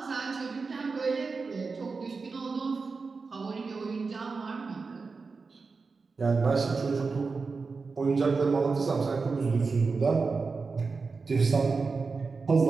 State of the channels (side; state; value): left; quieter; 4.5 dB